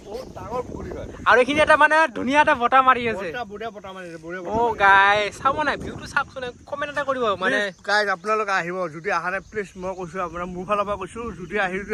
আৰু এইখিনি এটা মানে ধুনীয়া এটা বতাহ মাৰি আছে অ গাই চাব নাই ভিউটো চাওকচোন কমেণ্ট এটা কৰিব মানে গাইজ আপোনালোকে আহিব যদি অহা নাই প্লিজ মই কৈছোঁ আপোনাৰ মোৰ ফালৰ পৰা কৈছোঁ যদি আহি যদি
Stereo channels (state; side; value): identical; both; correlation 1.00